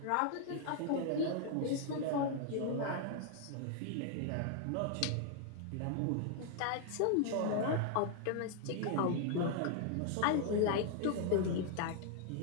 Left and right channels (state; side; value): different; both; correlation 0.00